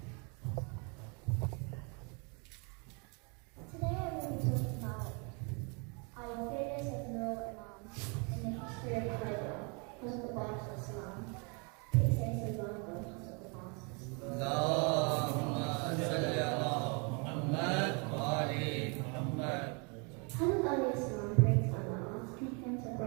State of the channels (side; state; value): left; quieter; 33.7 dB